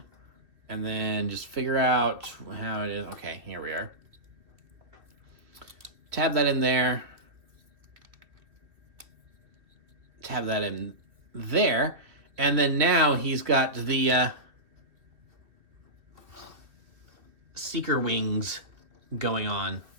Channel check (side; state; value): left; late; 2.5 ms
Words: and then just figure out how it is. Okay, here we are. Tab that in there. Tab that in there. And then now he's got the Seeker wings going on.